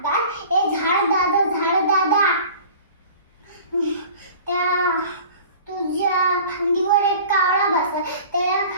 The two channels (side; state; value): both; inverted; correlation -0.43